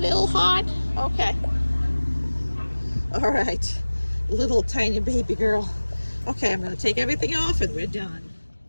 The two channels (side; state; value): both; inverted; correlation -1.00